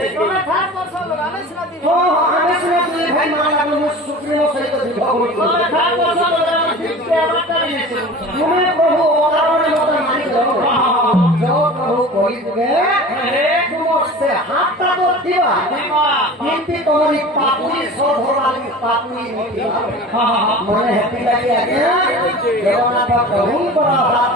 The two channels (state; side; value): normal; both; correlation 0.38